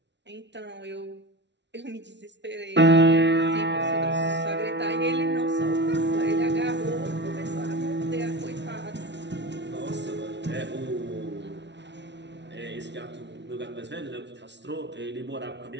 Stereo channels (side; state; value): left; late; 0.51 ms